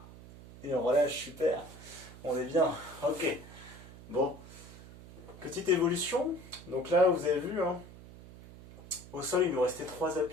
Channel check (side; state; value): right; noise; hum, 17 dB below the sound